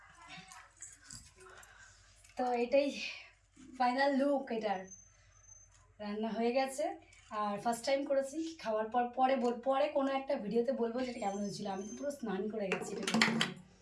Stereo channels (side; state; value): both; identical; correlation 1.00